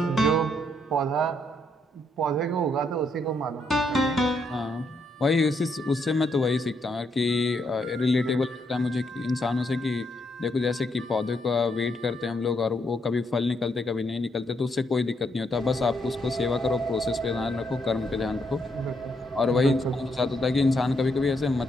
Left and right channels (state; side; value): normal; both; correlation 0.76